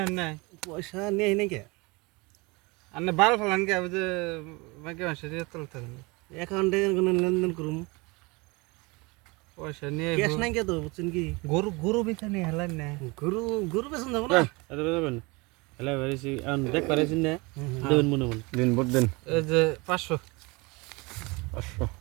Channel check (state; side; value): quieter; left; 25.9 dB